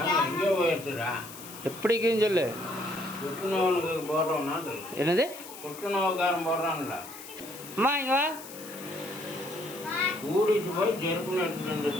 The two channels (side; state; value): left; noise; hiss, 14 dB below the sound